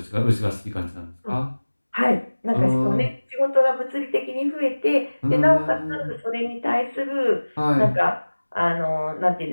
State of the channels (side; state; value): both; inverted; correlation -1.00